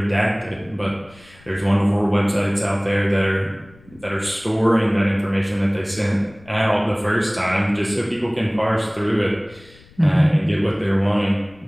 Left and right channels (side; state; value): left; noise; rumble, 26 dB below the sound